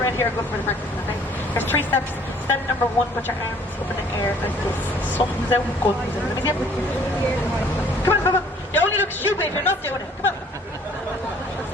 here are good for the practice, okay? There's 3 steps. Step number 1, put your arms up in the air like this. Thumbs out, guns out. Let me see it. Come on, come on. You only look stupid if you're not doing it. Come on.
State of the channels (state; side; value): normal; both; correlation 0.57